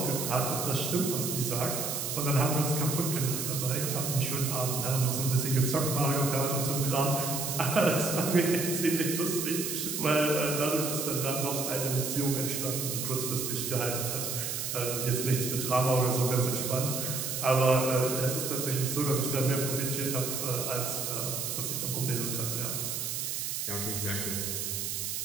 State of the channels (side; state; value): right; noise; hiss, 3 dB below the sound